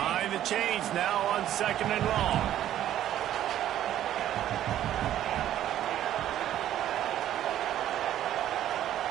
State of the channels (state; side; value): quieter; left; 11.9 dB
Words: the chains now on second and long.